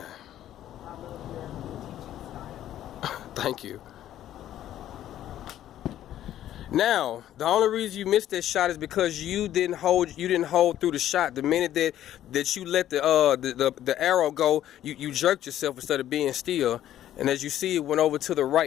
Thank you. Now, the only reason you missed that shot is because you didn't hold through the shot. The minute that you let the arrow go, you jerked yourself instead of being still. And as you see, it went over to the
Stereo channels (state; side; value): quieter; right; 12.1 dB